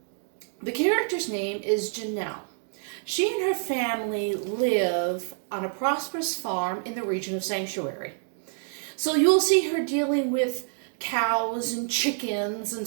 The character's name is Janelle. She and her family live on a prosperous farm in the region of Sanctuary. So you'll see her dealing with cows and chickens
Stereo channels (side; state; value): left; silent; digital silence